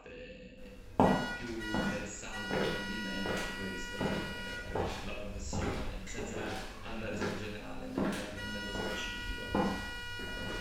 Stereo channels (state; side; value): identical; both; correlation 1.00